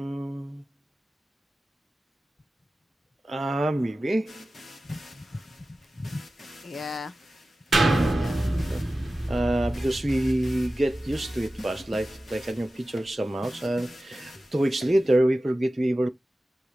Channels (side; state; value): both; normal; correlation 0.95